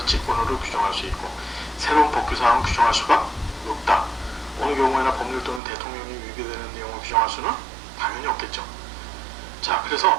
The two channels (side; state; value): left; drops out; at 5.6 s